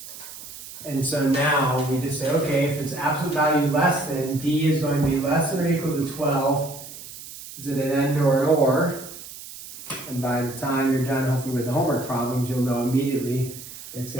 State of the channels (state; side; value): noise; right; hiss, 14 dB below the sound